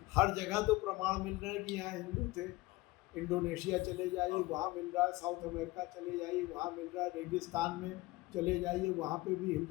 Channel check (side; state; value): right; quieter; 19.9 dB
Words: हर जगह तो प्रमाण मिल रहा है कि यहाँ हिंदू थे। इंडोनेशिया चले जाइए, वहाँ मिल रहा है, साउथ अमेरिका चले जाइए, वहाँ मिल रहा है, रेगिस्तान में चले जाइए, वहाँ पे भी